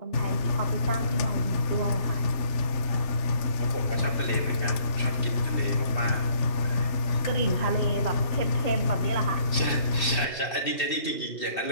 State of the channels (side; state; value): right; late; 2.7 ms